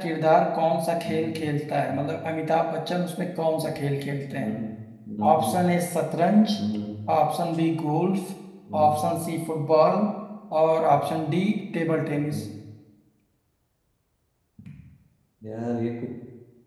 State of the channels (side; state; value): both; identical; correlation 1.00